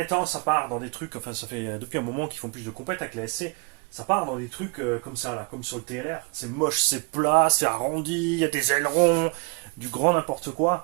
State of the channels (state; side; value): quieter; left; 30.2 dB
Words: ça part dans des trucs, enfin ça fait depuis un moment qu'ils font plus de compète avec la SC, ça part dans des trucs comme ça, là, comme sur le TLR. C'est moche, c'est plat, c'est arrondi, il y a des ailerons, du grand n'importe